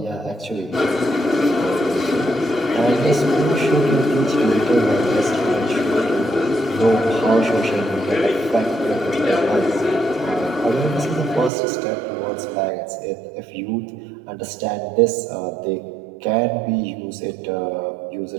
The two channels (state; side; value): drops out; left; at 11.5 s